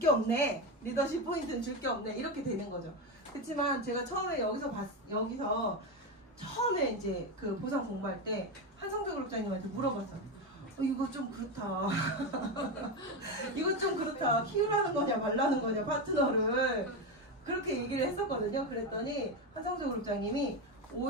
없네. 리더십 포인트는 줄 게 없네. 이렇게 되는 거죠. 그렇지만 제가 처음에 여기서 처음에 이제 그 보상 공부할 때 한성재 그룹장님한테 물어봤어요. 이거 좀 그렇다. 이거 좀 그렇다. 키우라는 거냐 말라는 거냐 파트너를. 그렇게 얘기를 했었거든요. 그랬더니 한성재 그룹장님이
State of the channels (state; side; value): normal; both; correlation 0.14